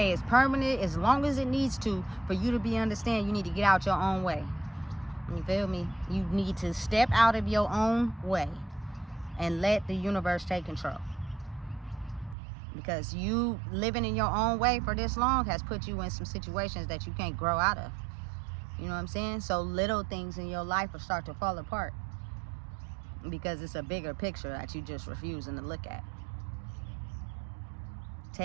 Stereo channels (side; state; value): left; drops out; at 12.4 s